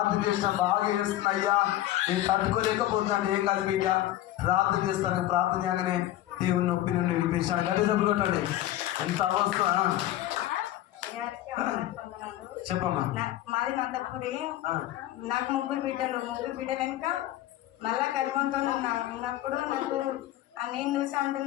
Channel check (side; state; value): right; quieter; 14.2 dB